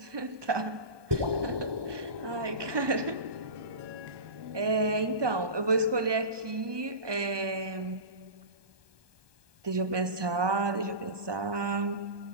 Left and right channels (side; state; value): left; late; 1.2 ms